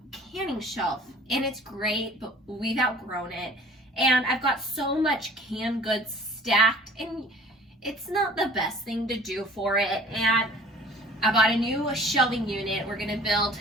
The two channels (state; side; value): normal; both; correlation 0.49